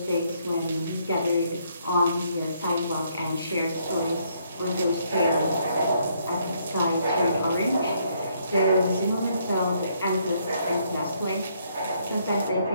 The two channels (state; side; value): inverted; both; correlation -0.71